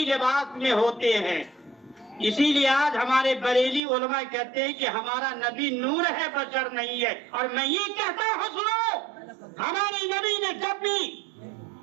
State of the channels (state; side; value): drops out; left; at 3.8 s